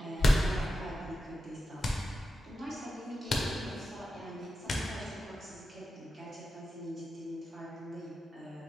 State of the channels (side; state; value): both; normal; correlation 0.90